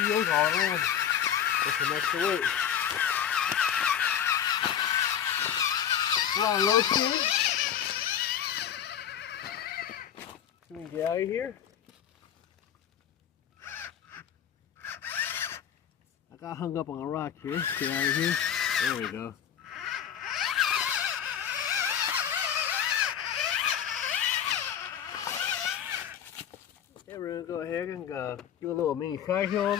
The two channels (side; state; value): right; quieter; 9.3 dB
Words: all in with some extra weight. We're on low speed. So we can get out of here. I got hung up on a rock here. Get out of here. There we go. Okay, we're going to go ahead and do a little mini side hill